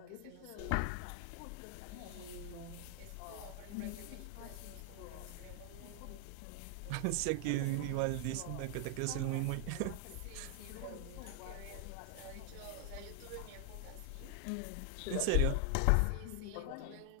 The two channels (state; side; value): different; both; correlation 0.00